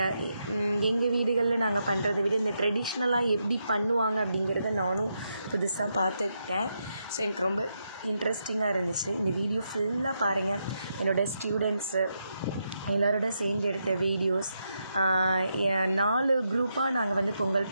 எங்கள் வீடுகளில் நாங்கள் பண்ணுறதை விட இந்த ட்ரெடிஷ்னலாக எப்படி பண்ணுவாங்க அப்படிங்கிறத நானும் புதுசாக பார்த்துக்கிட்டேன். ஸோ எனக்கு ரொம்ப இன்ட்ரெஸ்டிங்காக இருந்துச்சு. இந்த வீடியோ ஃபுல்லாக பாருங்கள். என்னோடய ஸ்டூடெண்ட்ஸு எல்லோரோட சேர்ந்து எடுத்த வீடியோஸ். 4 குரூப்பாக நாங்கள் வந்து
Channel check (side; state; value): both; inverted; correlation -0.83